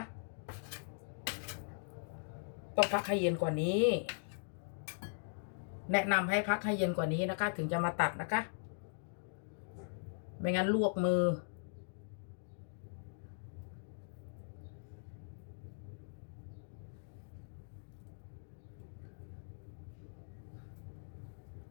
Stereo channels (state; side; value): silent; right; digital silence